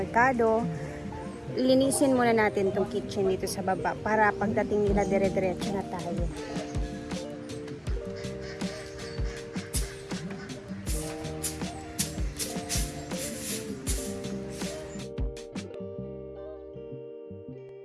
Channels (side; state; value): both; identical; correlation 1.00